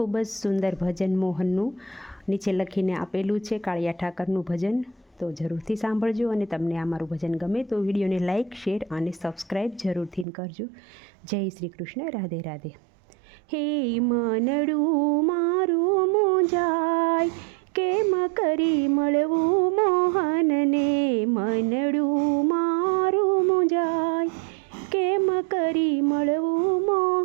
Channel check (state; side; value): drops out; left; at 10.2 s